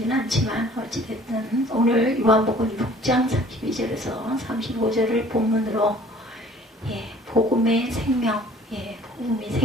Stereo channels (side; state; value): both; normal; correlation 0.52